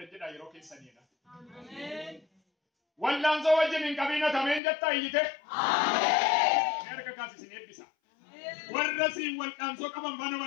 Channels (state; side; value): drops out; right; at 4.6 s